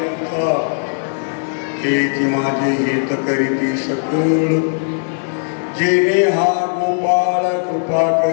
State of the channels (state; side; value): silent; right; 66 dB below the other